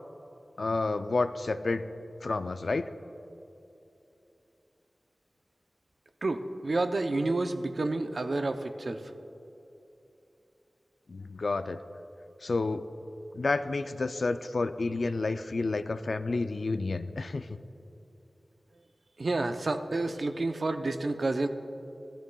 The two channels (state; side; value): normal; both; correlation 0.94